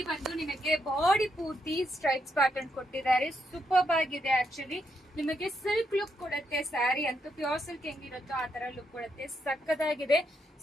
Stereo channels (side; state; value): both; normal; correlation 0.79